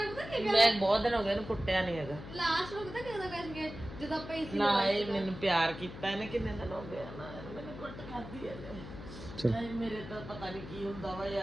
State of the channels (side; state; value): left; noise; hum, 12 dB below the sound